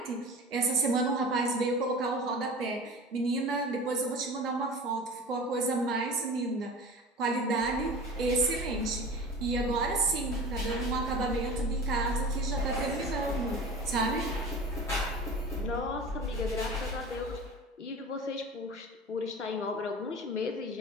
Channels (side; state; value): both; normal; correlation 0.36